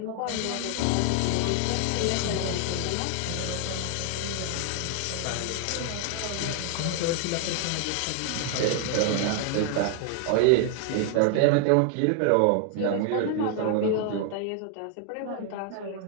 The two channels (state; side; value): different; both; correlation 0.00